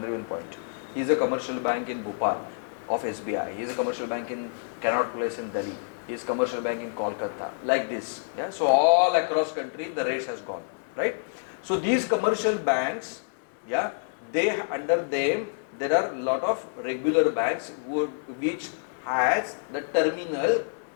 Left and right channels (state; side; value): silent; right; 60 dB below the other